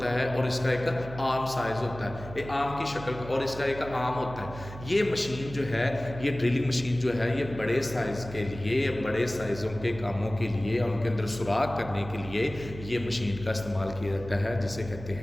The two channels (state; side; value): noise; right; hum, 13 dB below the sound